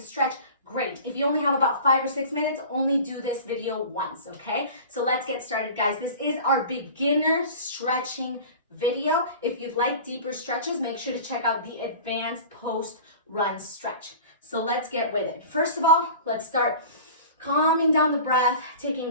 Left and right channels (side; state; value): both; inverted; correlation -0.39